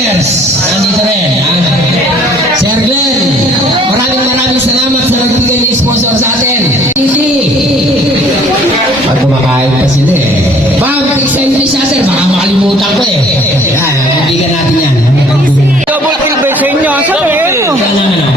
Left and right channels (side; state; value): both; normal; correlation 0.57